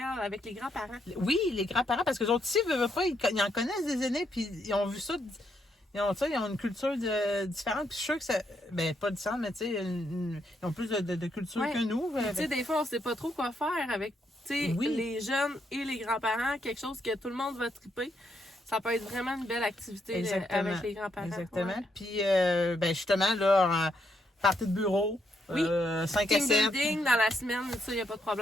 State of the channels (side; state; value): both; normal; correlation 0.77